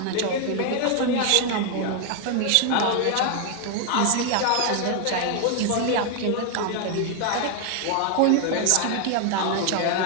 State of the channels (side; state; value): both; different; correlation 0.00